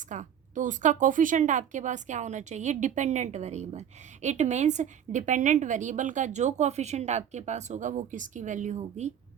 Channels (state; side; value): quieter; left; 9.2 dB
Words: का, तो उसका कोफिशिएंट आपके पास क्या होना चाहिए, dependent variable. It means dependent variable का जो कोफिशिएंट आपके पास होगा वो किसकी वैल्यू होगी,